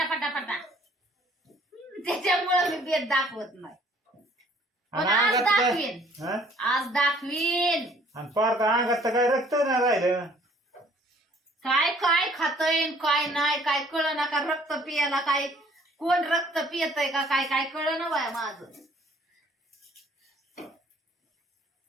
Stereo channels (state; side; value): normal; both; correlation 0.58